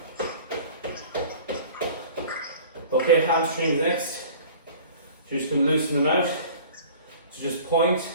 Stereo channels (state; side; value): inverted; both; correlation -0.45